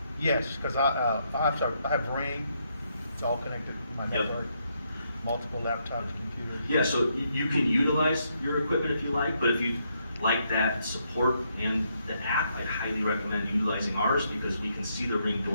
Yes, because I have Ring, it's all connected to my Yep. network, multiple laptops, computers. Yeah, so you can utilize your equipment if you like, but if you like that support and the app, I'd highly recommend utilizing ours because we can see the Ring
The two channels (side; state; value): both; inverted; correlation -0.77